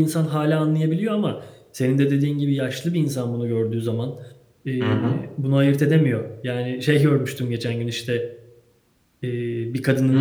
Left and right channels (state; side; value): identical; both; correlation 1.00